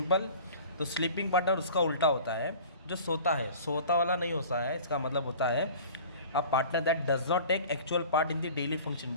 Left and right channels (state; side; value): inverted; both; correlation -0.43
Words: तो स्लीपिंग पार्टनर उसका उल्टा होता है, जो सोता है, सोता वाला नहीं होता है। इसका मतलब होता है a partner that does not take actual part in the daily